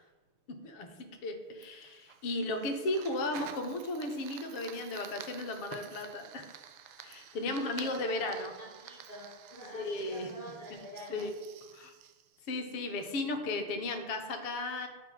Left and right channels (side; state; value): right; late; 6.6 ms